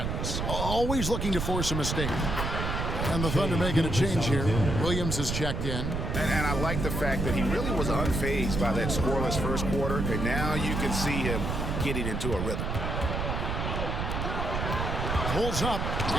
Always looking to force a mistake. And the Thunder making a change here. Williams is checked in. And I like the fact that he really was unfazed by that scoreless first quarter. And now you can see him getting into a rhythm. Pulls up.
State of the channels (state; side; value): noise; right; rumble, 2 dB below the sound